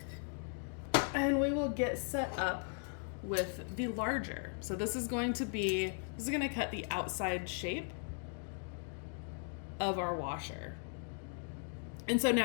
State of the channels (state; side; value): silent; right; 53 dB below the other